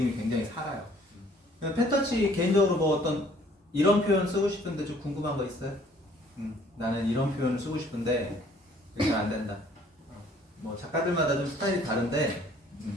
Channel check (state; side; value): normal; both; correlation 0.58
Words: 굉장히 살아요. 펜터치 개인적으로 뭐 어떤 이런 표현 쓰고 싶은데 좀 궁금한 거 있어요? 나는 이런 표현을 쓰고 싶은데 이렇게 안 된다. 뭐 작가들마다 좀 스타일이 다른데